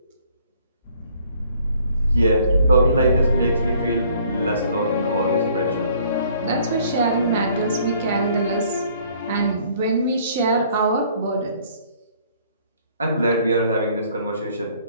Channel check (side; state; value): both; inverted; correlation -0.59